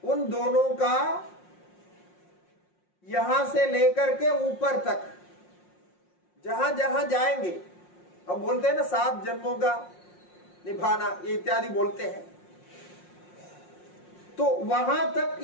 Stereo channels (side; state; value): right; late; 5.6 ms